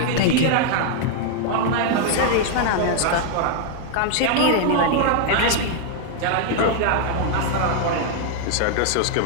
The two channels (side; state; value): both; different; correlation 0.00